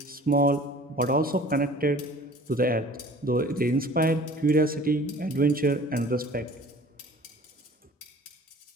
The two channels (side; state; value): both; normal; correlation 0.47